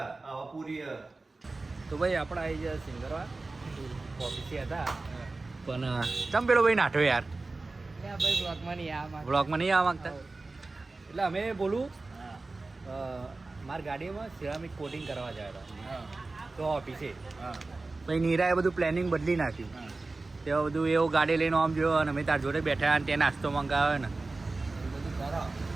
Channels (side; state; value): left; quieter; 3.4 dB